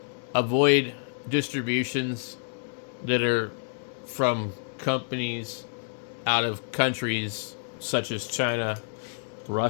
avoid distributions that are from companies out of countries such as China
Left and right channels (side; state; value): right; silent; 59 dB below the other